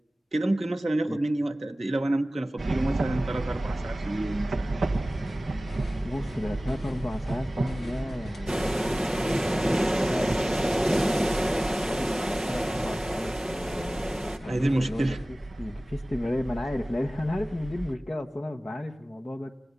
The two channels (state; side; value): normal; both; correlation 0.97